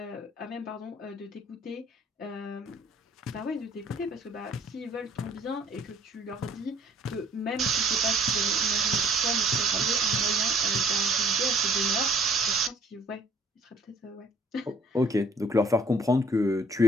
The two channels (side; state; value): both; normal; correlation 0.59